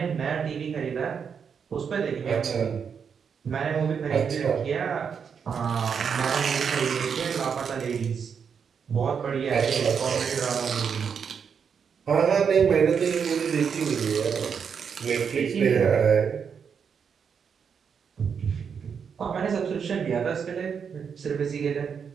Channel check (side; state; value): left; quieter; 6.7 dB